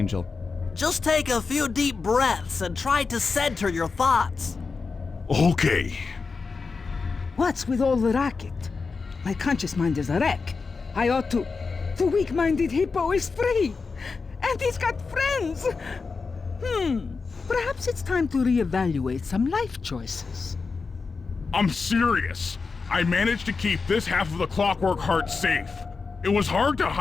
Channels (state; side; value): quieter; right; 4.6 dB